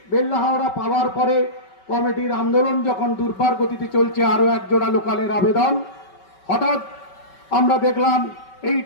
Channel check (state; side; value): late; right; 5.3 ms